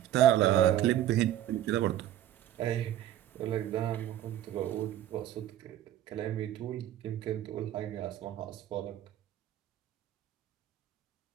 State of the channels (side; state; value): left; quieter; 12.1 dB